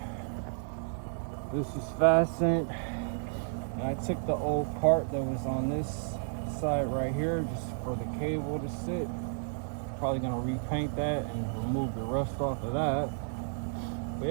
This is fastened. And I took the old part that was on this side right here just for the cable to sit. Probably gonna repaint that and remove the rust off of that. But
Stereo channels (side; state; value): left; silent; digital silence